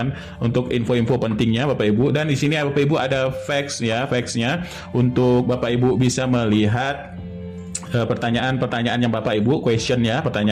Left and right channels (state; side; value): identical; both; correlation 1.00